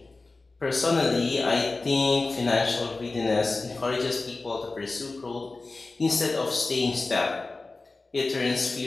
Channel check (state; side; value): quieter; right; 3.5 dB